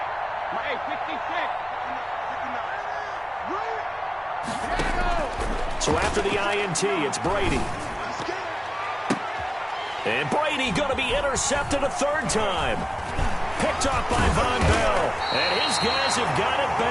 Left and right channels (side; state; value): both; identical; correlation 1.00